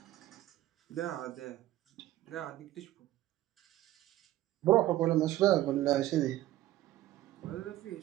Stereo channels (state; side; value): quieter; left; 14.9 dB